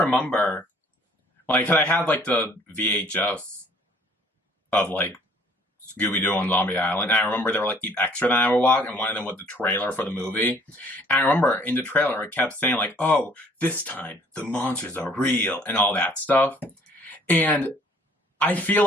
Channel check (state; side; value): normal; both; correlation 0.58